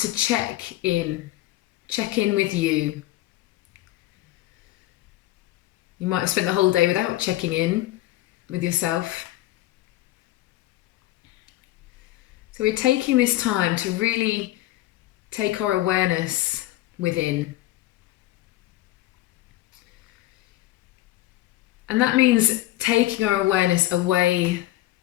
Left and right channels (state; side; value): quieter; right; 16.1 dB